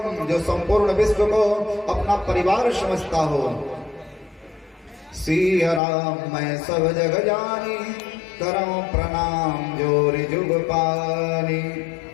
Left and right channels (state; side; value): drops out; right; at 5.8 s